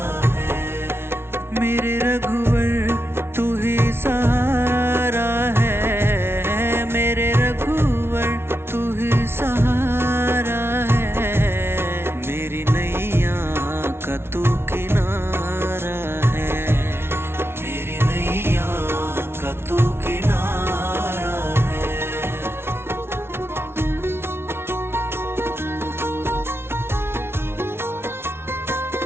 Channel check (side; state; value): left; late; 0.12 ms